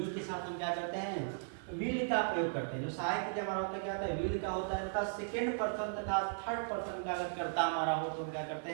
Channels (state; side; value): silent; left; digital silence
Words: के साथ हम क्या करते हैं, विल का प्रयोग करते हैं। जो सहायक क्रिया हमारा होता है क्या होता है, विल का होता है तथा सेकेंड पर्सन तथा थर्ड पर्सन का अगर कर्ता हमारा हो तो हम क्या करते